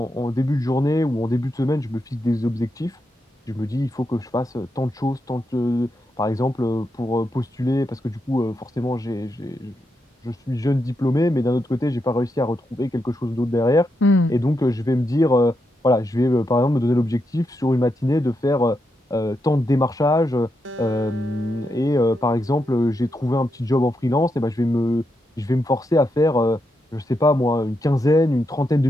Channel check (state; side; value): normal; both; correlation 0.84